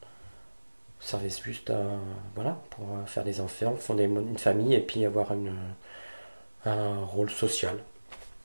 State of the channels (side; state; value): both; inverted; correlation -1.00